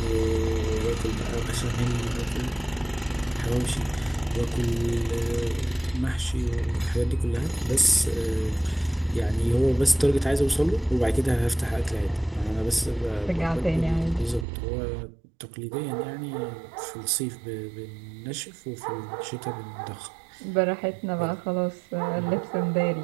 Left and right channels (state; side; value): drops out; left; at 14.5 s